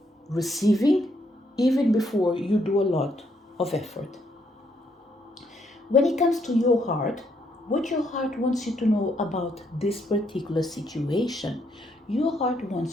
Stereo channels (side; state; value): both; normal; correlation 0.73